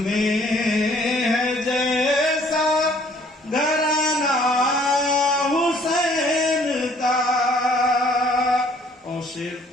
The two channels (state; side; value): normal; both; correlation 0.59